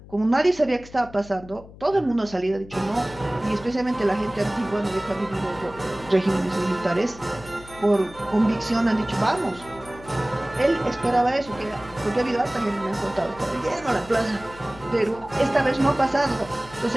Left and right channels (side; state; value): left; noise; hum, 19 dB below the sound